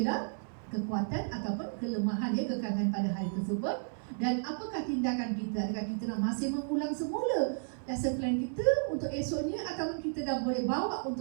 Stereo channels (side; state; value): left; silent; digital silence